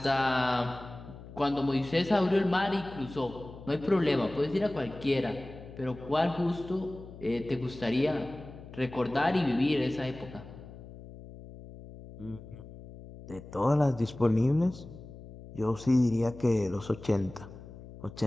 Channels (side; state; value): left; noise; hum, 16 dB below the sound